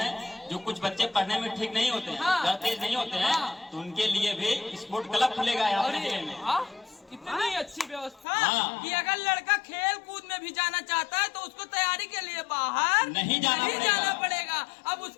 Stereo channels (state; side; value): drops out; right; at 8.2 s